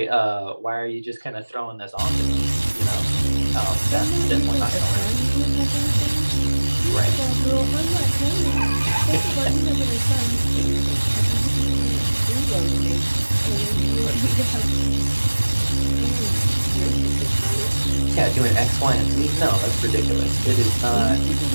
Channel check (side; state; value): both; inverted; correlation -1.00